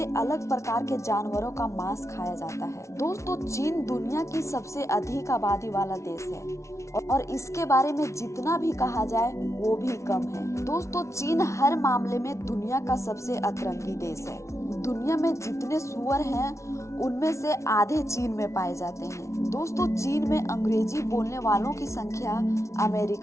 अलग प्रकार के जानवरों का मांस खाया जाता है। दोस्तों, चीन दुनिया की सबसे अधिक आबादी वाला देश है और इसके बारे में जितना भी कहा जाए वो भी कम है। दोस्तों, चीन हर मामले में दुनिया का सबसे अतरंगी देश है। दुनिया में जितने सूअर हैं उनमें से आधे चीन में पाए जाते हैं। दोस्तों, चीन में अंग्रेजी बोलने वालों की संख्या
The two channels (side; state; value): right; late; 0.14 ms